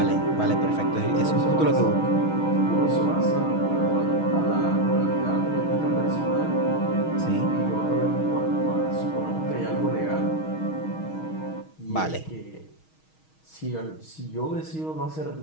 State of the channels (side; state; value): right; late; 6.3 ms